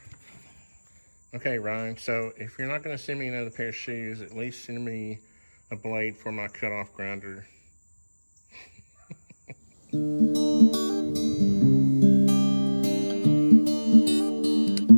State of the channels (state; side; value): inverted; both; correlation -1.00